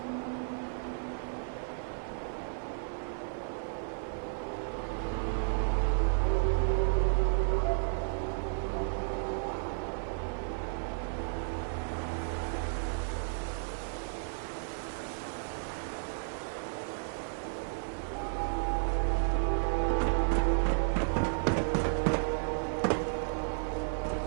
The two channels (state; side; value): silent; left; 56 dB below the other